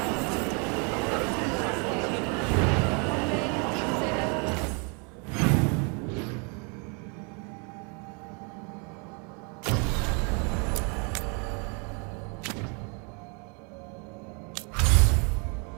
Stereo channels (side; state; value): left; quieter; 34.9 dB